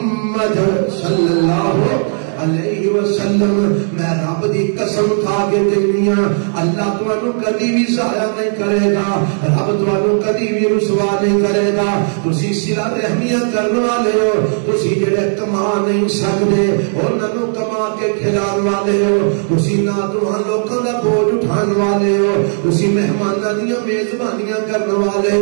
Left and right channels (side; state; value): left; silent; digital silence